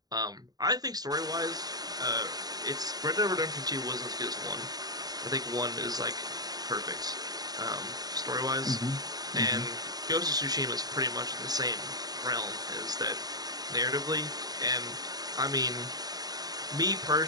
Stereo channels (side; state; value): left; late; 0.19 ms